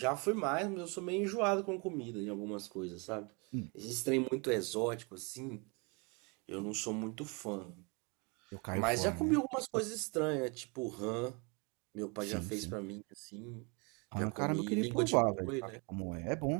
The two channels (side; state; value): left; quieter; 31.5 dB